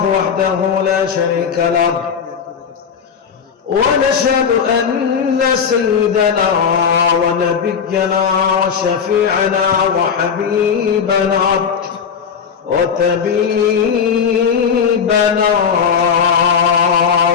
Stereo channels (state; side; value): quieter; right; 6.8 dB